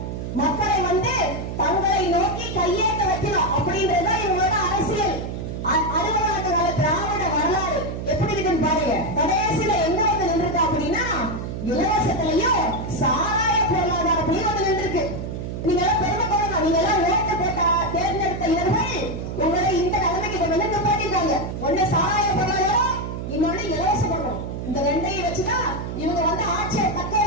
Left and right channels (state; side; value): noise; right; hum, 6 dB below the sound